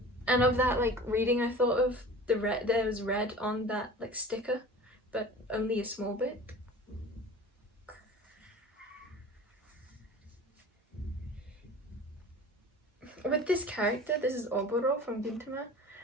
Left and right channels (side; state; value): both; normal; correlation 0.40